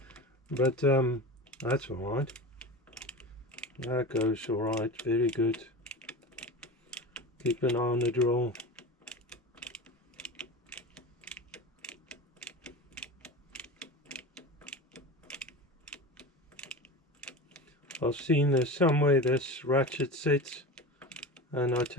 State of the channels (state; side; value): normal; both; correlation 0.29